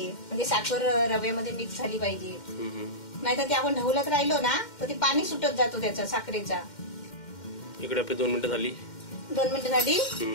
म्हणजे साखर रव्यामध्ये मिक्स झाली पाहिजे. नाहीतर ते आपण ढवलत राहिलो ना तर ते पाणी सुटत जातो त्याचा साखरेचा. इकडे आपली 2 मिनिटं झाली. 2 मिनिटं झाली.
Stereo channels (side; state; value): right; late; 2.1 ms